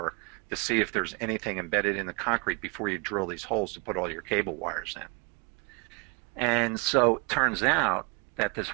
to see if there's anything embedded in the concrete before you drill these holes to put all your cable wires in. And so it turns out that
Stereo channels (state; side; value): quieter; left; 32.6 dB